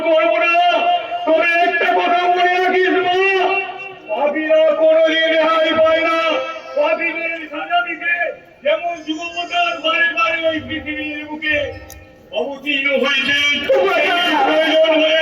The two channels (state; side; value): identical; both; correlation 1.00